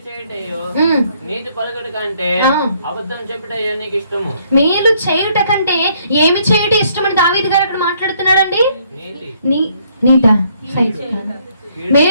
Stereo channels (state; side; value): inverted; both; correlation -0.67